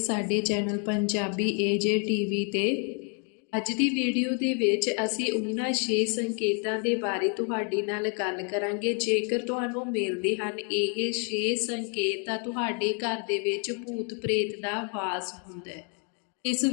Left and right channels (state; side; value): quieter; right; 39.3 dB